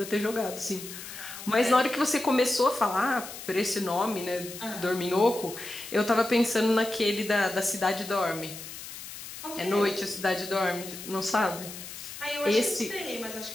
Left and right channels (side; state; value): left; noise; hiss, 12 dB below the sound